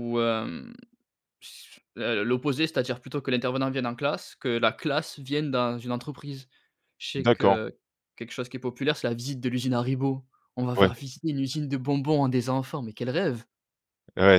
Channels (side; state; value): both; identical; correlation 1.00